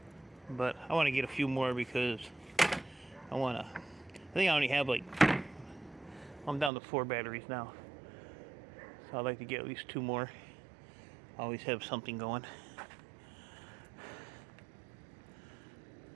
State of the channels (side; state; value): left; drops out; at 6.7 s